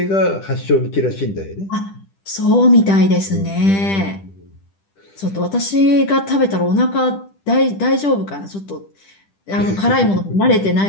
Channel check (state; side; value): late; right; 10 ms